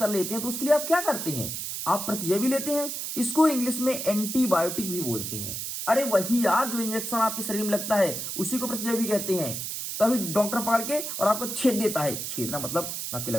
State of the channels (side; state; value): right; noise; hiss, 5 dB below the sound